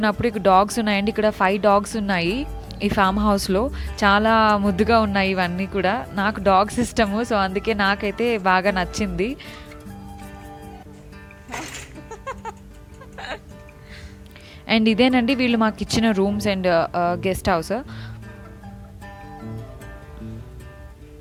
ఇక్కడ డాగ్స్ ఉన్నాయండి, ఇక్కడ 5 డాగ్స్ ఉన్నాయి ఈ ఫామ్ హౌస్లో. చాలా ముద్దుగా ఉన్నాయి ఇవన్నీ కూడా. నాకు డాగ్స్ ఇష్టము, సో అందుకే నాకైతే బాగా నచ్చింది. అండ్ ఇదేనండి వీళ్ళు మాకు ఇచ్చిన రూమ్స్ అండ్ గెస్ట్ హౌస్.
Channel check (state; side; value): identical; both; correlation 1.00